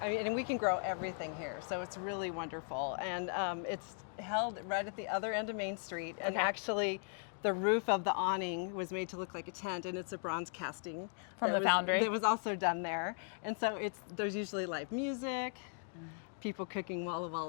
we can grow everything here, so it's really wonderful. And it's held right at the other end of Main Street, and Okay. actually, the roof of the awning was made to look like a tent, and it's a bronze casting From the foundry? that was also done there. And so there's usually live music, people cooking Walla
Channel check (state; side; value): silent; right; 53 dB below the other